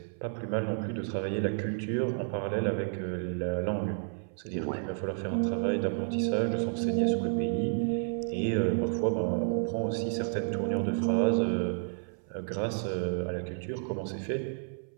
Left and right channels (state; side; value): silent; left; 57 dB below the other